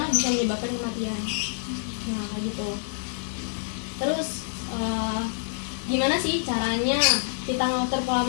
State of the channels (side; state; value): right; silent; 60 dB below the other